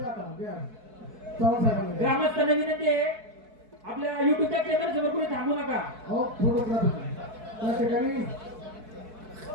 ग्रामस्थांना विनंती आहे, आपल्या युट्यूबच्या चॅनल समोर कुठे थांबू नका. हो फोटोग्राफी त्या ठिकाणी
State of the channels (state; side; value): late; left; 4.6 ms